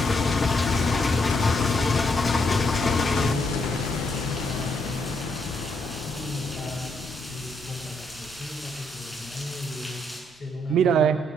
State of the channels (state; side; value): normal; both; correlation 0.75